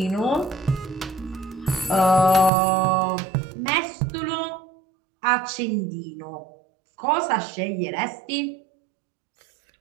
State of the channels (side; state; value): left; drops out; at 2.5 s